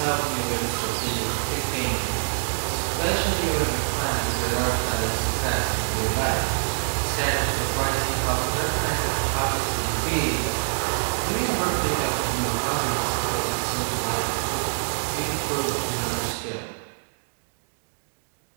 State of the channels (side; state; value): left; silent; digital silence